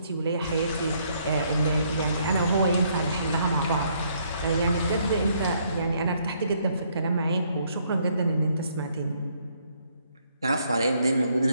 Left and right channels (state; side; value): inverted; both; correlation -0.69